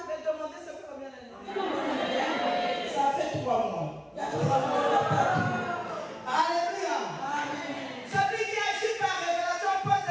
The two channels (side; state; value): both; identical; correlation 1.00